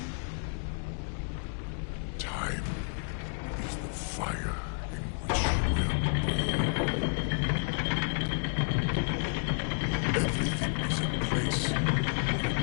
Time is the fire in which we're born. Everything is in place.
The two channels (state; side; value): silent; right; 57 dB below the other